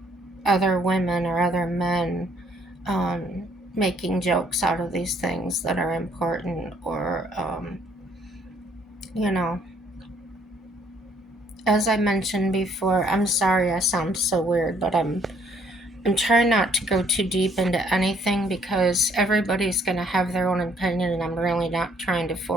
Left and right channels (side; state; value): both; normal; correlation 0.65